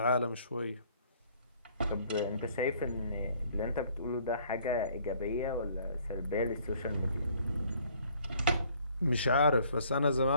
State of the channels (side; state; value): both; inverted; correlation -0.60